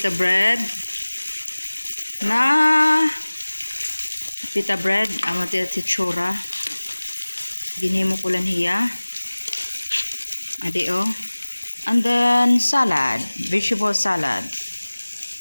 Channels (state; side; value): inverted; both; correlation -1.00